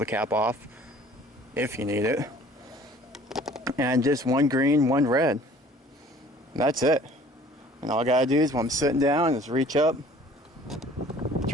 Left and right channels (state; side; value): normal; both; correlation 0.51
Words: cap off if you need it. And just one green, one red. That's it. And all I gotta do is when I'm sitting down, is reach up,